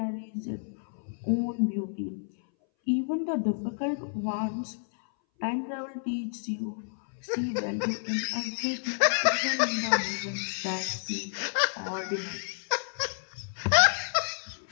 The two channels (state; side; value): silent; right; 58 dB below the other